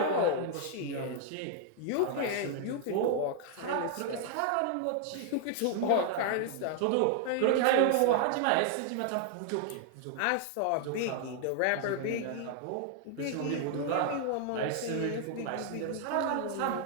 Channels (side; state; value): both; different; correlation -0.01